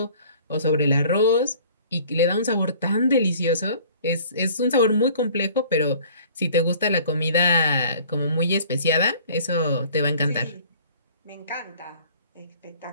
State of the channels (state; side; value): inverted; both; correlation -0.51